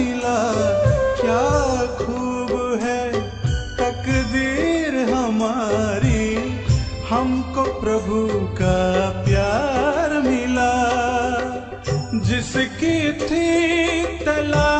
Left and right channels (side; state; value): both; identical; correlation 1.00